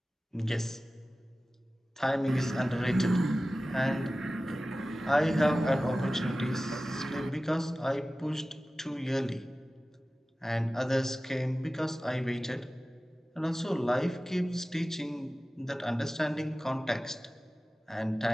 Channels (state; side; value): normal; both; correlation 0.96